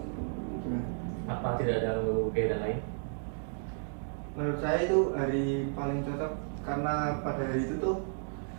Apa tidak ada mengganggu kegiatan lain? Menurut saya itu hari paling cocok karena pada hari itu tuh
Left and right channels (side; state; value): left; silent; digital silence